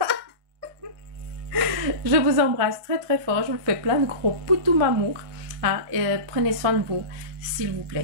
Je vous embrasse très fort. Je vous fais plein de gros poutous amour. Hein, et prenez soin de vous, s'il vous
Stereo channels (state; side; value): late; left; 1.6 ms